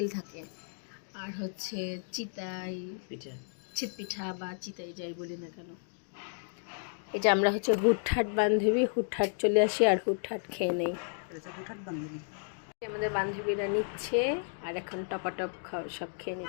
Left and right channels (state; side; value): silent; right; digital silence